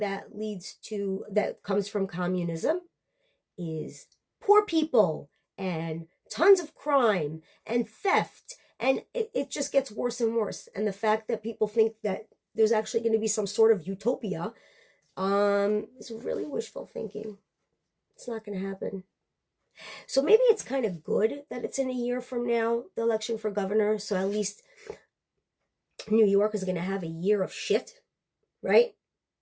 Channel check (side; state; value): both; identical; correlation 1.00